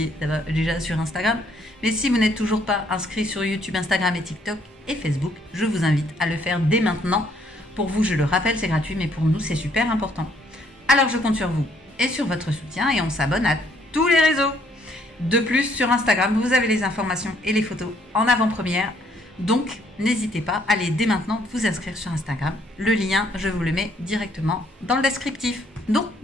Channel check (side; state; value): both; normal; correlation 0.66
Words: déjà sur Instagram. Mais si vous n'êtes toujours pas inscrit sur YouTube, Instagram et TikTok et Facebook, je vous invite à le faire dès maintenant. Pour vous, je le rappelle, c'est gratuit, mais pour nous, c'est super important. Alors je compte sur vous et sur votre soutien et on s'abonne à tous les réseaux. De plus, sur Instagram, vous avez les informations et les photos en avant-première. Donc, n'hésitez pas, allez dès maintenant vous inscrire sur Instagram. Le lien, je vous le mets directement dans le descriptif. Donc,